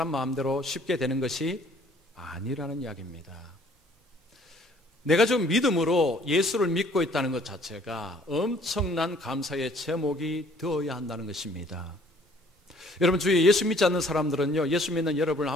마음대로 쉽게 되는 것이 아니라는 이야기입니다. 내가 좀 믿음으로 예수를 믿고 있다는 것 자체가 엄청난 감사의 제목이 되어야 한다는 것입니다. 여러분, 주위에 예수 믿지 않는 사람들은요, 예수 믿는 여러분을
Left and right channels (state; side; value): normal; both; correlation 0.58